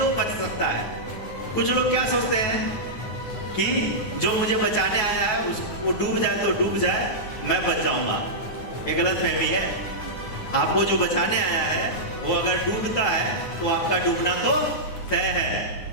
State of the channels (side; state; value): right; late; 9.5 ms